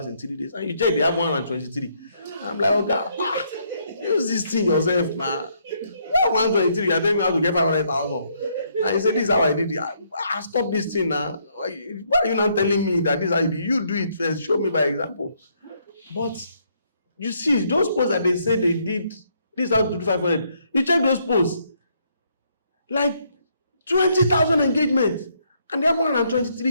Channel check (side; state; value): both; inverted; correlation -0.71